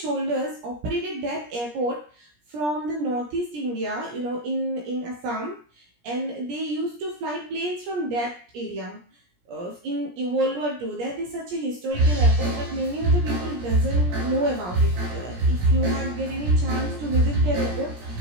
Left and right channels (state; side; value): late; left; 17 ms